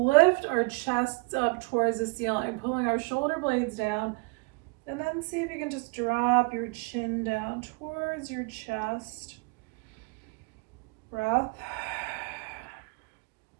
our chests up towards the ceiling, pulling our shoulder blades down, and then see if you can just drop your chin down towards your chest. Breath.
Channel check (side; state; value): left; quieter; 30.8 dB